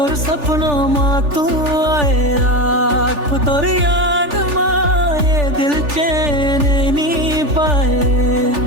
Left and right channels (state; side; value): late; left; 3.4 ms